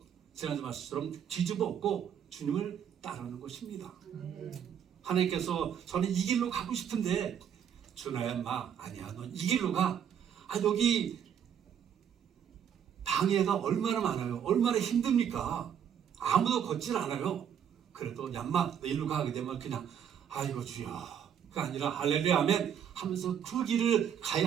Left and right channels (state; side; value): quieter; left; 8.7 dB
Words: 지난주 말씀처럼 뒤집어 엎고 주님을 따르는 것입니다. 하나님께서 저는 이 길로 가고 싶은데 준하야 마 아니야 넌 이 길로 가. 여기 방해가 얼마나 많아요. 얼마나 힘듭니까? 아무도 걷질 않아요. 그래도 얌마 너 일로 가게 되면 그냥 아이고 주여 그가 아니라 할렐루야 아멘 하면서 그 길을